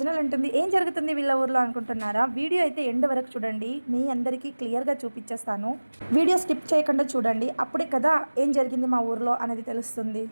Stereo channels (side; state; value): both; inverted; correlation -1.00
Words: అంటుంది, ఏం జరుగుతుంది వీళ్ళ ఊర్లో అనుకుంటున్నారా? వీడియో అయితే ఎండ్ వరకు చూడండి, మీ అందరికీ క్లియర్గా చూపించేస్తాను. వీడియో స్కిప్ చేయకుండా చూడండి, అప్పుడే కదా ఏం జరిగింది మా ఊర్లో అనేది తెలుస్తుంది.